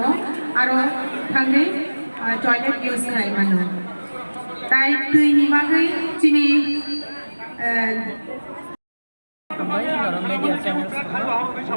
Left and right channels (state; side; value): inverted; both; correlation -1.00